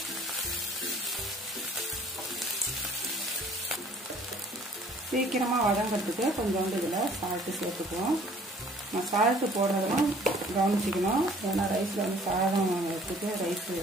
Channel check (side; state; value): both; normal; correlation 0.55